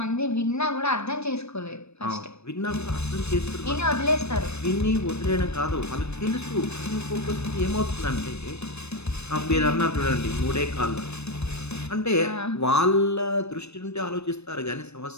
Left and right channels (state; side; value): late; right; 0.81 ms